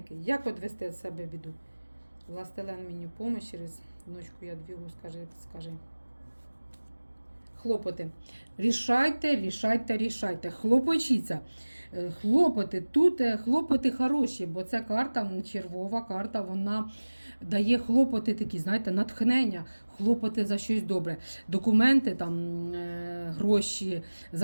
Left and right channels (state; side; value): inverted; both; correlation -1.00